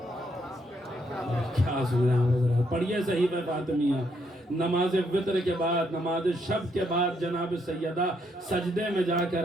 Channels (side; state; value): both; normal; correlation 0.74